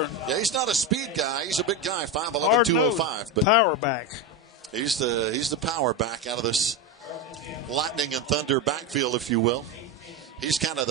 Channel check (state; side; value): normal; both; correlation 0.15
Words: Yeah, he's not a speed guy. He's a big guy, 5'11", 205. But power back. He's the power back out of this lightning and thunder backfield, if you will. He's kind of